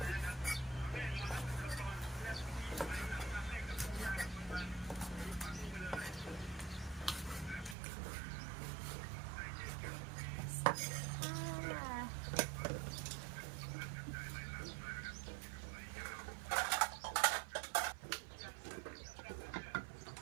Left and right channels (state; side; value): drops out; left; at 7.8 s